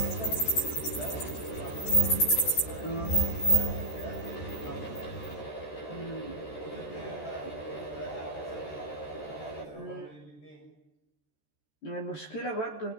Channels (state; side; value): late; right; 13 ms